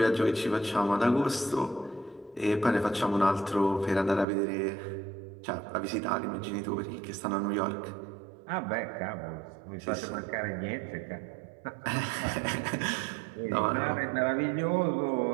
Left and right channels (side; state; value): left; drops out; at 4.2 s